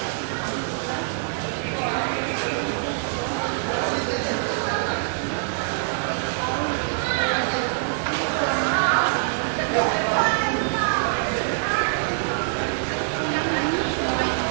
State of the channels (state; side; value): silent; left; digital silence